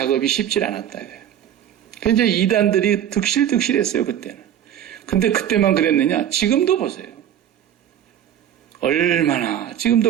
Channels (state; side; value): quieter; left; 10.3 dB